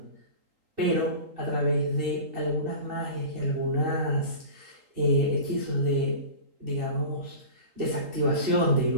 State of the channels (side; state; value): left; late; 3.8 ms